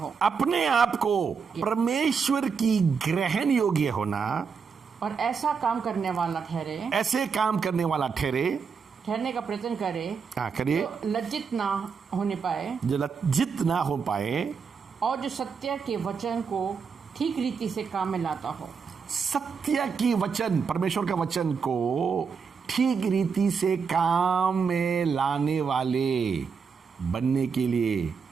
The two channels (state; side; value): quieter; left; 5.8 dB